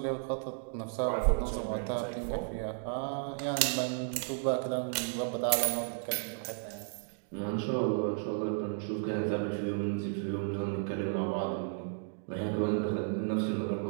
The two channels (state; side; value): silent; left; digital silence